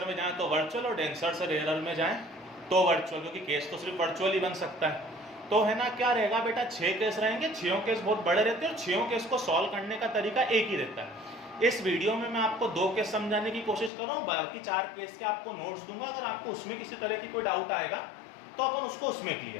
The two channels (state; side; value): drops out; right; at 13.9 s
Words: में जाएं तो वर्चुअल और डेंसर से रेयरर में जाएं तो वर्चुअल, क्योंकि केस तो सिर्फ वर्चुअल ही बन सकता है। तो है ना, क्या रहेगा बेटा, 6 केस रहेंगे। 6 केस बहुत बड़े रहते हैं और 6 केस को सॉल्व करने का तरीका एक ही रहता है। इस वीडियो में मैं आपको 2 केस समझाने की कोशिश कर रहा हूँ, बाकी 4 केस के आपको नोट्स दूंगा। अगर आपको उसमें किसी तरह की कोई डाउट आएगा तो अपन उसको उसमें